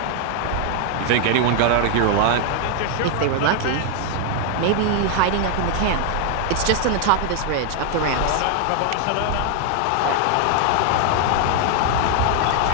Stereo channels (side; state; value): both; different; correlation 0.00